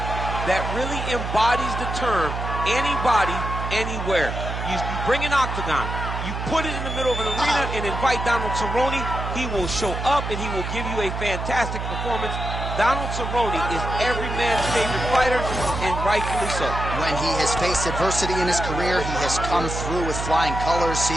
that really embodies the term anybody, anywhere. You bring an octagon, you put it in the middle of an arena and invite Donald Cerrone, he will show up and he will give you a fantastic performance. Donald Cerrone is every man's favorite fighter, and rightfully so. When he has faced adversity in his career, he has come through with flying colors. See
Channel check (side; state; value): right; noise; hum, 5 dB below the sound